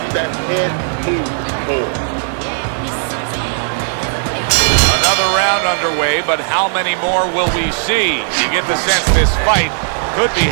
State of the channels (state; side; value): silent; left; digital silence